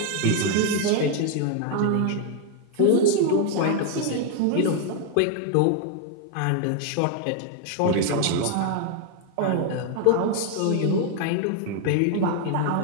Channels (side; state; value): both; different; correlation 0.00